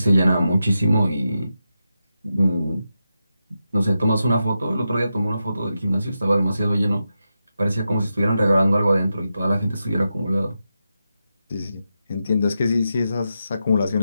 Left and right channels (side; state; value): both; inverted; correlation -0.88